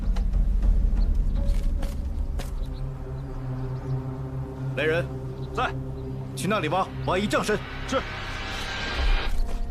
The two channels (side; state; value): both; identical; correlation 1.00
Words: 来人，在。去那里挖一丈深。是。